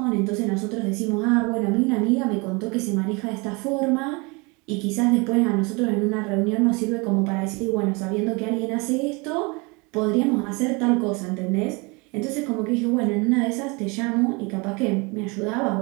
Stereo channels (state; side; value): quieter; left; 28.2 dB